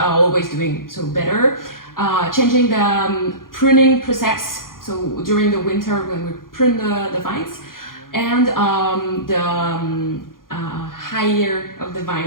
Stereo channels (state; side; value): late; right; 0.91 ms